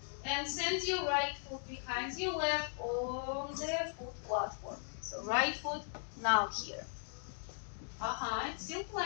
and send your right foot behind your left on the foot platform. So right foot now here. It's still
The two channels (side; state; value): right; silent; digital silence